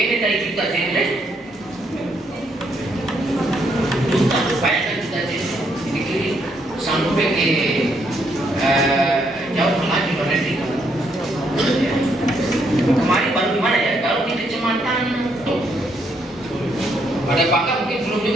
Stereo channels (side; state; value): both; normal; correlation 0.74